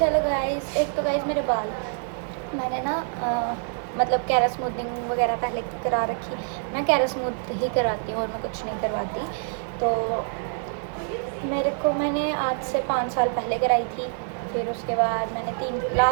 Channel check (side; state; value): left; silent; 61 dB below the other